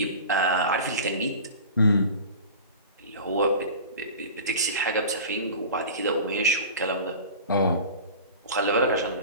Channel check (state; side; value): inverted; both; correlation -0.36